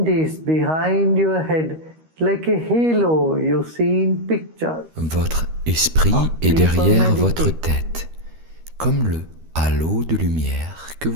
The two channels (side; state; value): left; late; 13 ms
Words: Votre esprit est derrière votre tête, comme le halo de lumière que